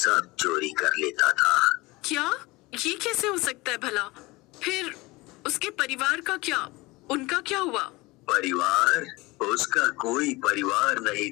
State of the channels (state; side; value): quieter; right; 22.3 dB